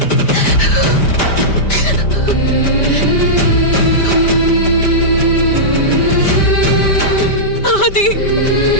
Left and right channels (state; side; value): late; right; 5.1 ms